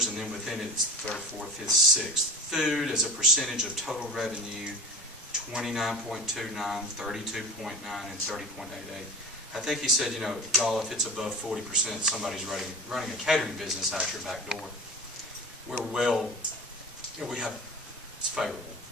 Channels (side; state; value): both; normal; correlation 0.34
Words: and then within it, it's third, fourth, fifth, sixth. Food as a percentage of total revenue, 29.29, 32.9, and 30.88. I think he said, y'all, if it's above 40%, somebody's running a catering business out your back door. We're well, it's favorable.